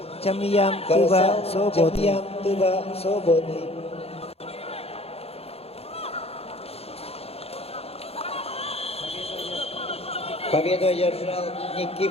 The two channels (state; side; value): late; right; 0.29 ms